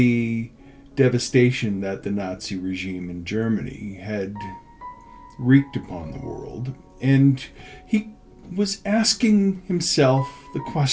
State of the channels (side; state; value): both; identical; correlation 1.00